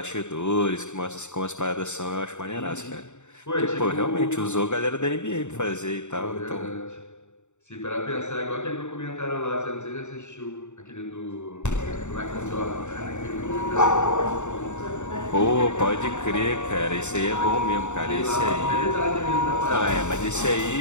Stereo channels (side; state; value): right; late; 0.84 ms